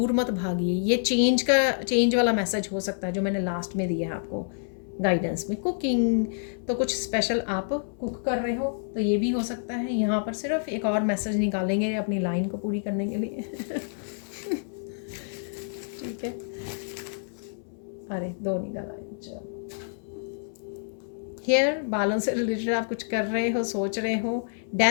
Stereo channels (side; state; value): right; silent; 60 dB below the other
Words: मत भागिए। ये चेंज वाला मैसेज हो सकता है जो मैंने लास्ट में दिया है आपको गाइडेंस में। कुकिंग, तो कुछ स्पेशल आप कुक कर रहे हो तो ये भी हो सकता है। यहाँ पर सिर्फ एक और मैसेज निकालेंगे अपनी लाइन को पूरी करने के लिए। ठीक है। अरे 2 निकाला है, चलो। हेयर, बालों से रिलेटेड आप कुछ कर रहे हो, सोच रहे हो।